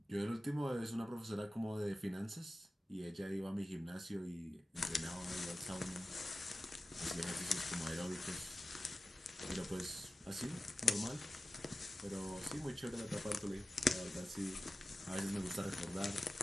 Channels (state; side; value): normal; both; correlation 0.95